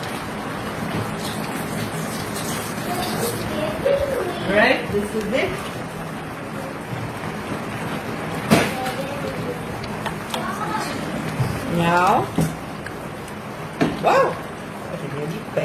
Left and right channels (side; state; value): both; identical; correlation 1.00